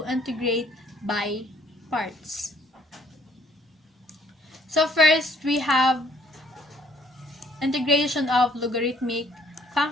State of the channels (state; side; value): normal; both; correlation 0.63